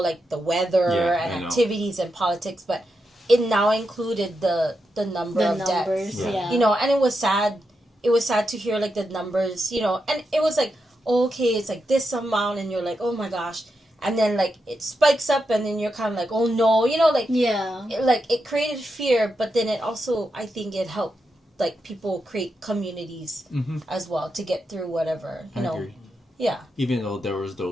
the weather Yeah, I and know. activities and politics, but it now included the number The of numbers, deaths. yeah. You know, and it was sad. It was sad to hear like the numbers, you know, and it was like, okay, it's like this amount, and you're like, oh my gosh. And then like it spikes up, and then you're kind of like, oh no, you know, like Yeah. it created fear, but then it also, I think it helped like people create communities as well to get through whatever, you I know. agree. Yeah. Even though there was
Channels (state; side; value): normal; both; correlation 0.86